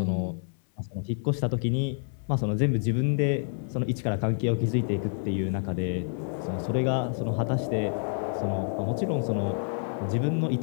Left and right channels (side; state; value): right; silent; 59 dB below the other